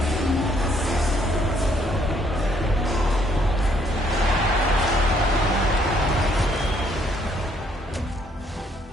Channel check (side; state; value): both; normal; correlation 0.68